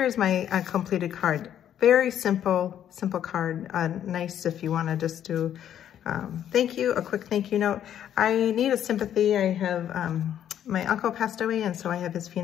my completed card. Very simple card. Nice if you want to just do thank you, a quick thank you note. I need a sympathy. I have, my uncle passed away, and so I have his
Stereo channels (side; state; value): right; quieter; 10.3 dB